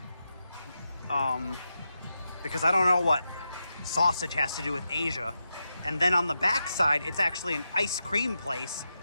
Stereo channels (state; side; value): inverted; both; correlation -0.88